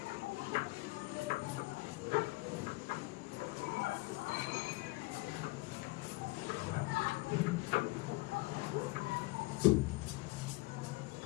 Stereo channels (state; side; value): quieter; right; 23.0 dB